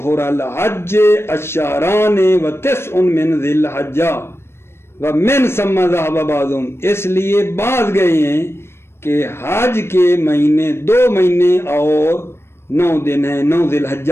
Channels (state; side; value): late; right; 0.12 ms